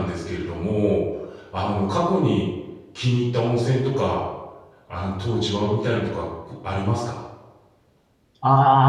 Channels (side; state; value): both; identical; correlation 1.00